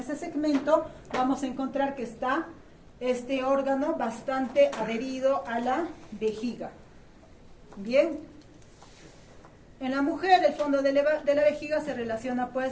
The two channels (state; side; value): identical; both; correlation 1.00